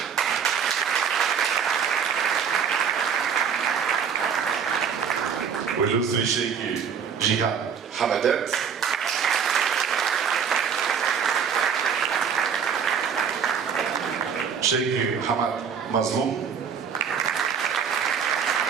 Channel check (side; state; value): left; quieter; 7.1 dB